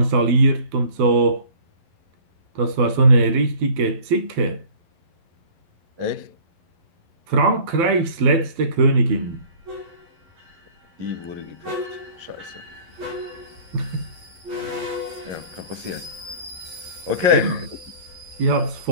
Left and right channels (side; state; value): left; late; 11 ms